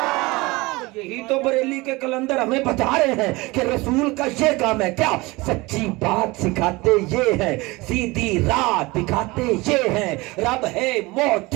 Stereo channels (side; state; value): left; quieter; 22.8 dB